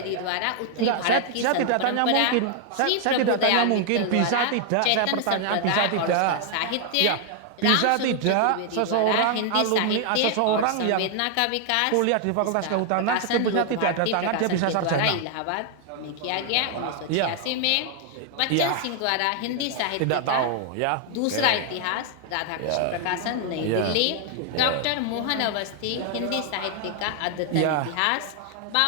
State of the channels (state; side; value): different; both; correlation 0.00